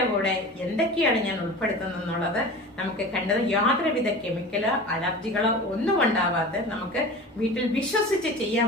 കൂടെ എന്തൊക്കെയാണ് ഞാൻ ഉൾപ്പെടുത്തുന്നത് എന്നുള്ളത് നമുക്ക് കണ്ടത് യാതൊരുവിധ കെമിക്കലോ അലർജികളോ ഒന്നും ഉണ്ടാവാത്ത നമുക്ക് വീട്ടിൽ വിശ്വസിച്ച് ചെയ്യാൻ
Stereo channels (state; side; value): normal; both; correlation 0.35